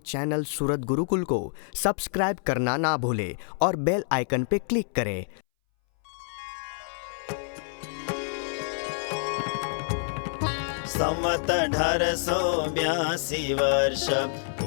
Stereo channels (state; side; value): silent; right; 60 dB below the other